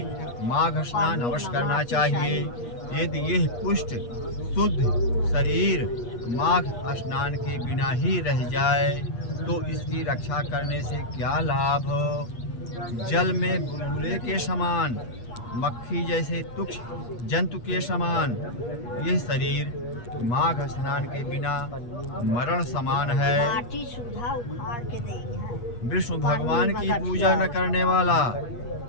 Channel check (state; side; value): late; right; 8.4 ms